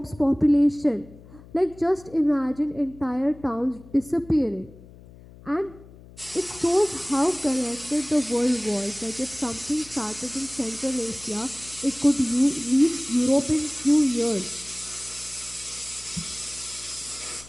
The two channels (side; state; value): left; noise; hum, 20 dB below the sound